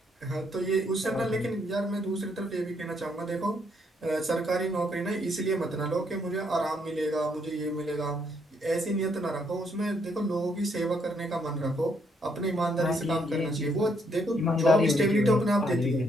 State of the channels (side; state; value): both; normal; correlation 0.72